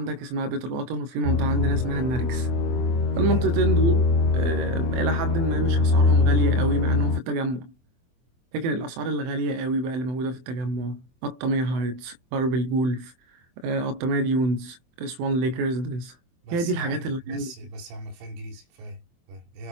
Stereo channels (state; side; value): late; left; 23 ms